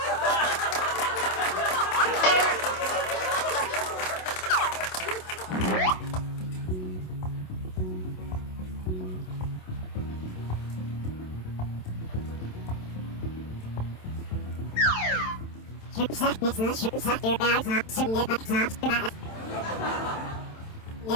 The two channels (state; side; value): late; right; 27 ms